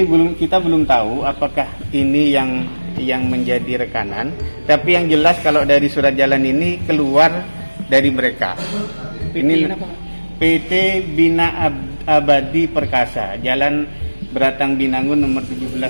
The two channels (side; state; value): both; inverted; correlation -1.00